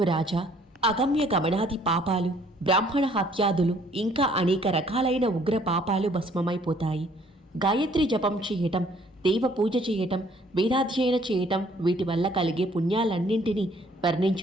రాజా, అగమ్య గమనాది పాపాలు, బ్రాహ్మణ హత్యాదులు, ఇంకా అనేక రకాలైన ఉగ్ర పాపాలు భస్మమైపోతాయి. గాయత్రి జపం చేయటం, దేవ పూజ చేయటం, వేదాధ్యయన చేయటం, వీటి వల్ల కలిగే పుణ్యాలన్నింటినీ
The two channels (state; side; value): normal; both; correlation 0.61